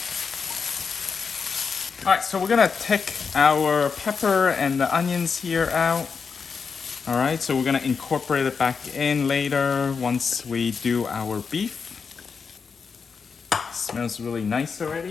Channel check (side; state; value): right; quieter; 5.6 dB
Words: All right, so we're gonna take our pepper and the onions here out. All right, so we're gonna incorporate it back in later once we do our beef. Smells really nice